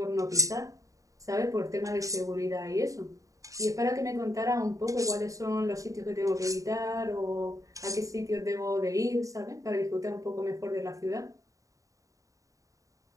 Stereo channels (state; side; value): late; left; 0.16 ms